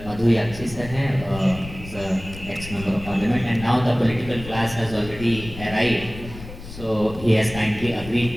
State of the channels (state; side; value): noise; left; rumble, 13 dB below the sound